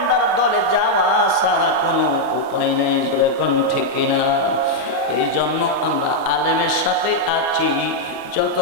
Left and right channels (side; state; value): both; normal; correlation -0.02